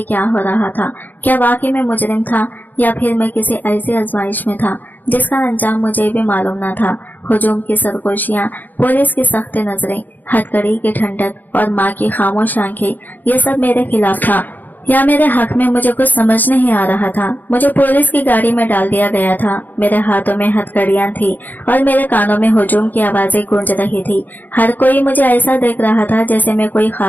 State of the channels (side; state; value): right; late; 0.085 ms